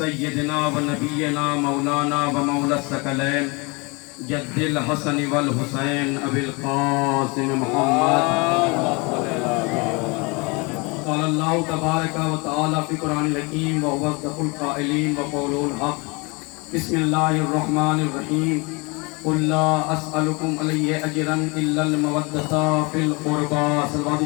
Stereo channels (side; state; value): right; quieter; 28.3 dB